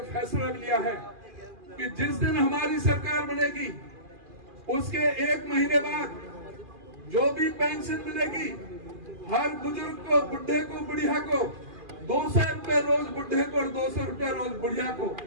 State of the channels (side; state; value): left; late; 2.4 ms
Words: फैसला लिया है कि जिस दिन हमारी सरकार बनेगी उसके 1 महीने बाद जो भी पेंशन मिलेगी हर बुजुर्ग को, बुढ़े को, बुढ़िया को 200 रुपए रोज बुढ़े को और 200 रुपए रोज बुढ़िया को